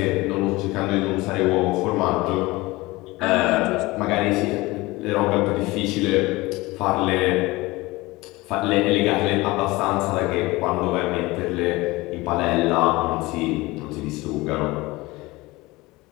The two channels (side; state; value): right; quieter; 21.2 dB